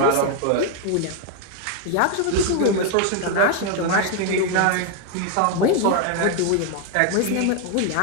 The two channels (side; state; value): both; different; correlation 0.01